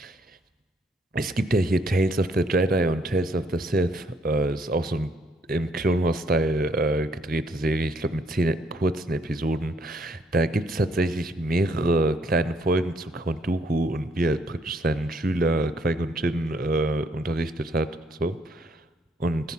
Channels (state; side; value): normal; both; correlation 0.68